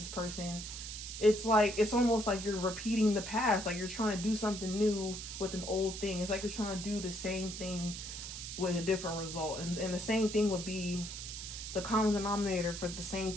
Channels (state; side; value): noise; right; hiss, 8 dB below the sound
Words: person, it's almost like you're repeating the past. Like you're trying to do something new with an old thing. It's like you're trying to do the same thing with a different result. And the same thing would be, the common denominator for the